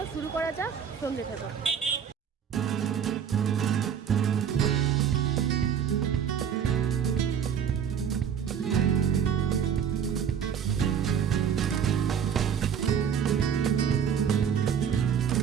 শুরু করা যাক, সঙ্গে থাকো।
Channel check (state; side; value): quieter; left; 7.9 dB